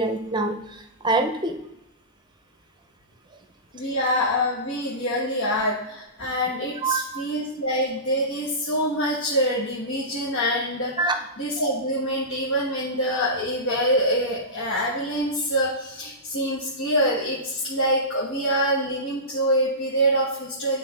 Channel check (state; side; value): normal; both; correlation -0.20